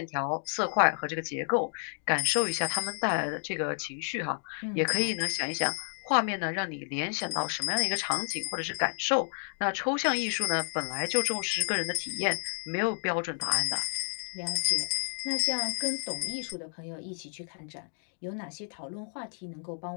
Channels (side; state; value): right; silent; 57 dB below the other